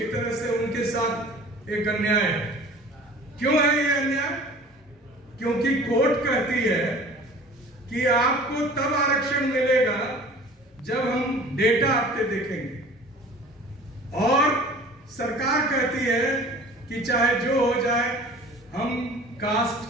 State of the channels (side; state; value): both; normal; correlation 0.45